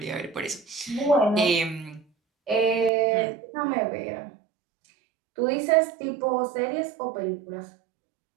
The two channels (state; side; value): drops out; left; at 2.9 s